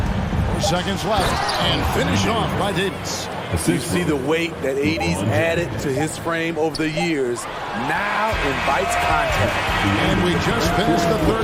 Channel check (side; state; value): both; identical; correlation 1.00